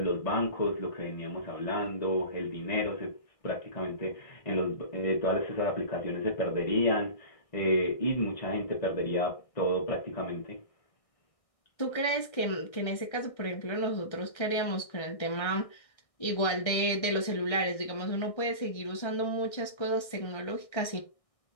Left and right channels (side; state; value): right; late; 1.6 ms